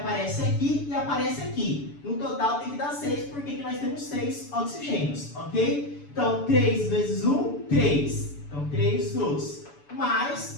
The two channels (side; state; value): right; late; 7.0 ms